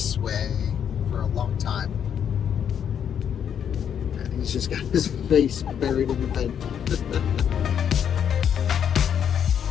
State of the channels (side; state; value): right; quieter; 8.5 dB